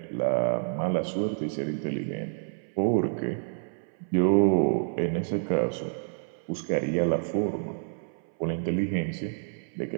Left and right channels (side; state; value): left; silent; 58 dB below the other